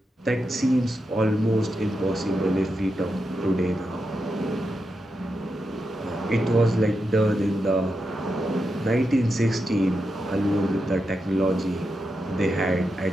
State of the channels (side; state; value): both; normal; correlation 0.87